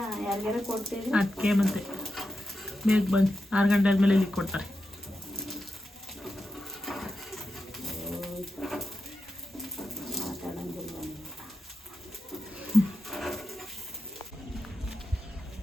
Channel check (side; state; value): both; normal; correlation 0.89